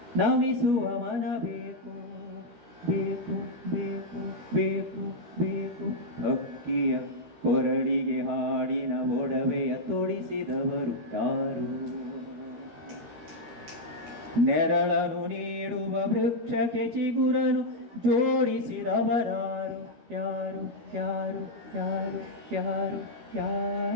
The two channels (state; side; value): late; left; 12 ms